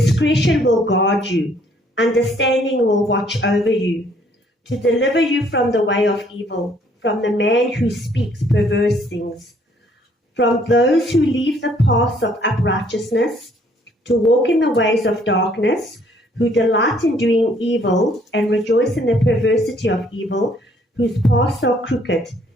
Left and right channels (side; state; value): both; normal; correlation 0.63